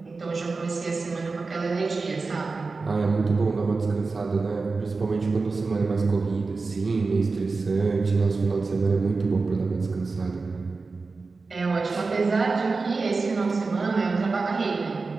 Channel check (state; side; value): quieter; left; 4.1 dB